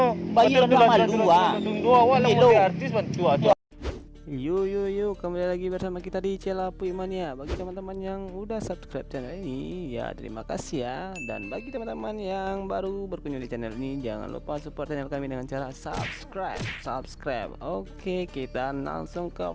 Bayar lah malu Dua wala mau artis bantu tu. Yo, kembali lagi bersama kita di Channel Puy Mania. Bagi teman-teman yang udah subscribe channel ini, ya terima kasih ya. Dan bagi teman-teman yang baru berkunjung di channel ini, jangan lupa support channel kami dengan cara subscribe. Oke, kita langsung ke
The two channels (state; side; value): identical; both; correlation 1.00